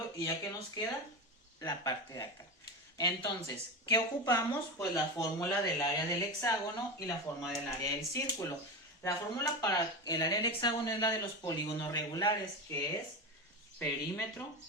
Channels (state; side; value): normal; both; correlation 0.20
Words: y ya que nos queda la parte de acá. Entonces, ¿qué ocupamos? Pues la fórmula del área del hexágono y la fórmula del área del círculo. La fórmula para el área del hexágono es la de los polígonos regulares, que es perímetro